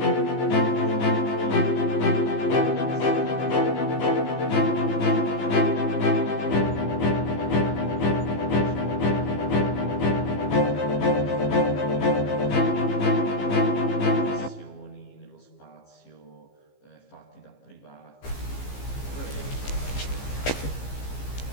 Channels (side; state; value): right; late; 15 ms